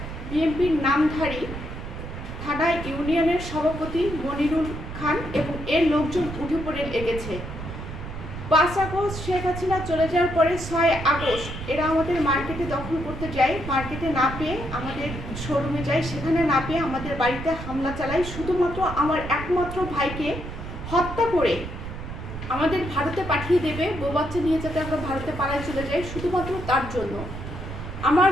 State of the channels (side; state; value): right; noise; rumble, 9 dB below the sound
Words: বিএনপির নামধারী থানা ইউনিয়নের সভাপতি মনিরুল খান এবং এর লোকজন উঠে পড়ে লেগেছে। 5 আগস্ট শেখ হাসিনা চলে যাওয়ার পরে 6 আগস্ট এরা আমাদের মার্কেটে দখল করতে যায়। মার্কেটে না পেয়ে আমাদের শোরুমে যায়, সেখানে না পেয়ে আমাদের বাড়িতে হামলা চালায়। শুধুমাত্র আমার একমাত্র ভাইকে হত্যা করে আমাদের ভারতে পাঠিয়ে দেবে, বউ বাচ্চা নিয়ে যাতে আমরা ভারতে পালায় চলে যাই, শুধুমাত্র তার জন্য। আমার